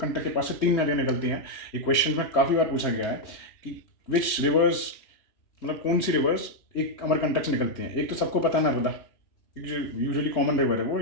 के पास से 3 नदियाँ निकलती हैं। ये क्वेश्चन में काफ़ी बार पूछा गया है कि विच रिवर्स, मतलब कौन सी रिवर्स एक अमरकंटक से निकलती हैं। एक तो सबको पता है नर्मदा, क्योंकि जो यूजुअली कॉमन रिवर है वो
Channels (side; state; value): right; late; 3.0 ms